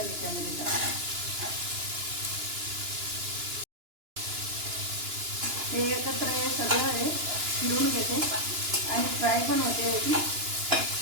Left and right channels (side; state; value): left; late; 2.9 ms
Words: याच्यामध्ये टाकते. हे एकत्र हे सगळं हे फिरून घेते आणि फ्राय पण होते याची